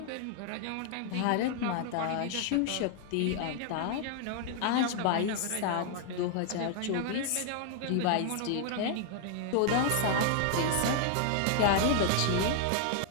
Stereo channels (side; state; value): both; different; correlation 0.00